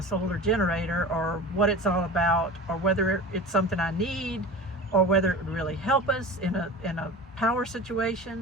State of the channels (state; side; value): normal; both; correlation 0.34